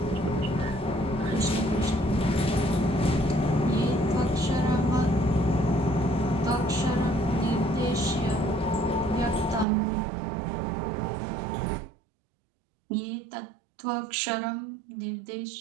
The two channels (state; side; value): drops out; left; at 9.7 s